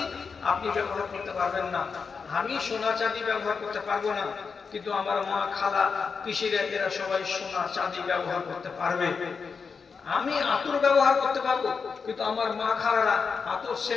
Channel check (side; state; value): right; quieter; 5.4 dB